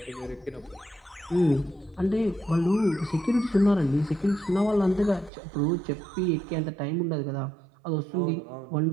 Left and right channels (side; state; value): left; drops out; at 5.3 s